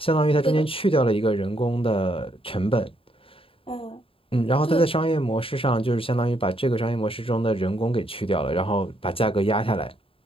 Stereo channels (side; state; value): right; late; 0.27 ms